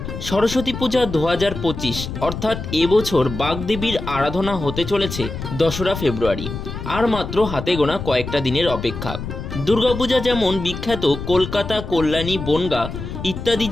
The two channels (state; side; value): noise; left; rumble, 8 dB below the sound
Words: সরস্বতী পূজা 2025 অর্থাৎ এবছর বাগদেবীর আরাধনা হতে চলেছে 2রা ফেব্রুয়ারি। আর মাত্র হাতে গোনা কয়েকটা দিনের অপেক্ষা। দুর্গাপূজা যেমন বিখ্যাত কলকাতা, কল্যাণী, বনগাঁ ইত্যাদি